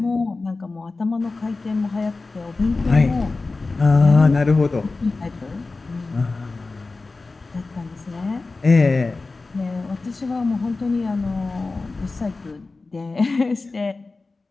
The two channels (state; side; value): quieter; right; 3.7 dB